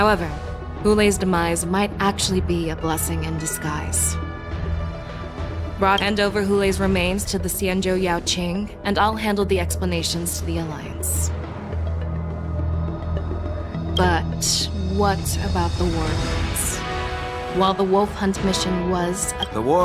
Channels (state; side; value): identical; both; correlation 1.00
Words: Wulei's demise might actually be a blessing in disguise. Hand over Wulei's remains to the Xianzhou Yaoqing, and I'll handle the explanations to the Alliance. But what about the war dance? While the wolf hunt mission was... The